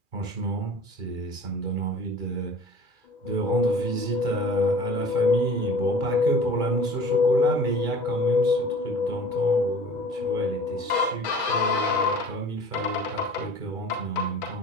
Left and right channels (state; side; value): late; left; 2.4 ms